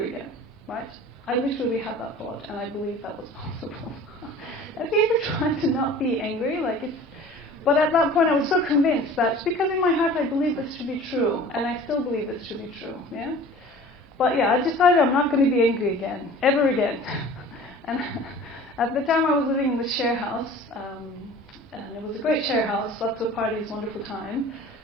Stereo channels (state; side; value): normal; both; correlation 0.44